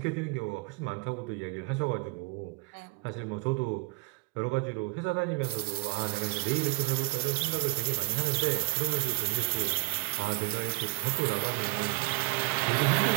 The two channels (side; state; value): left; quieter; 19.3 dB